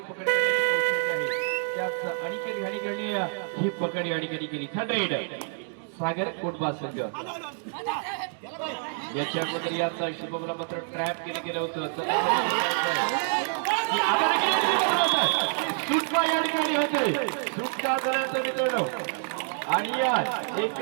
पकड आहे त्याच अनिकेत घाणीकरणी ही पकड या ठिकाणी केली. थर्ड सागर कोटबा संघ याच्या अगोदर याचा शुभमला मात्र ट्रॅप केलं गेलं होतं. सुटका या ठिकाणी होते, सुटका झाल्याचं मित्रांनो आणि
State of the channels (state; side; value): silent; left; 60 dB below the other